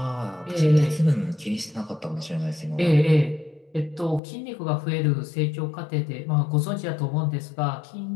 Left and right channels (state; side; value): drops out; right; at 4.2 s